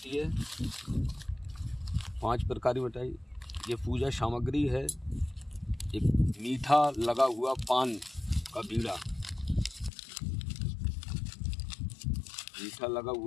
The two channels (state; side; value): drops out; right; at 9.9 s